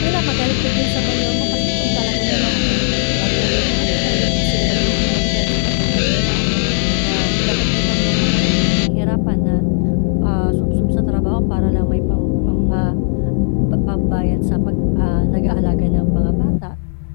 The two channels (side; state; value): right; silent; 68 dB below the other